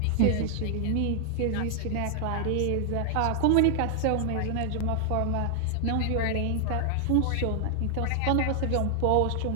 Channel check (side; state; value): both; different; correlation 0.00